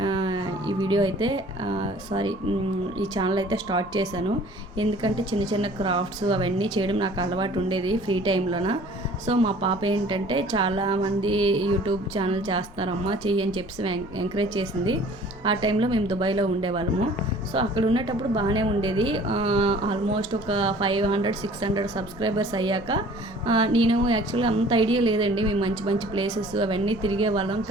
ఈ వీడియో అయితే ఈ ఛానల్ అయితే స్టార్ట్ చేశాను. ఎందుకంటే చిన్న చిన్న క్రాఫ్ట్స్ అవన్నీ చేయడం నాకు అలవాటు ఉండేది ఫ్రీ టైంలోన. సో మా పాప ఏంటంటే చాలామంది యూట్యూబ్ ఛానల్ చేస్తున్నారమ్మా, చెయ్యి అని చెప్పి ఎంకరేజ్ చేసింది. ఆ టైంలో మేము దుబాయ్లో ఉండేవాళ్ళము. సో అక్కడ ఉండేటప్పుడు బాగానే ఉండేది. ఆల్మోస్ట్ ఒక 500-600 సబ్స్క్రైబర్స్ అయ్యాక నేను యాక్చువల్గా అంత ఐడియా లేదండి. మేము మంచి మంచి ప్లేసెస్ అవన్నీ తిరిగే వాళ్ళం,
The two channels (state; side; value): normal; both; correlation 0.50